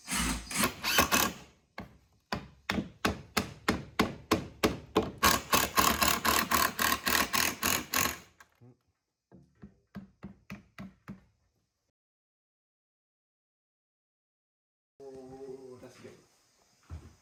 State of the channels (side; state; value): both; identical; correlation 1.00